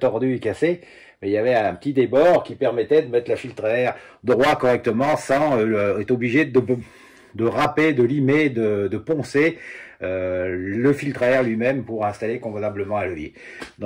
et cassé, mais il y avait un petit débord qui permettait de mettre la filtre à air droit correctement sans être obligé de râper, de limer, de poncer le filtre à air lui-même pour installer convenablement un levier.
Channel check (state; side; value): identical; both; correlation 1.00